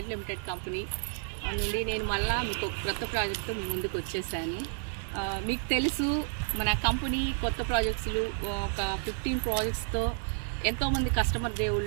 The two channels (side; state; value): left; silent; digital silence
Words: limited company నుండి నేను మళ్ళీ మీకు ఒక కొత్త ప్రాజెక్టు మీ ముందుకు వచ్చేసాను. మీకు తెలుసు మన కంపెనీ కొత్త ప్రాజెక్ట్స్లు ఒక 15 ప్రాజెక్ట్స్తో ఎంతోమంది కస్టమర్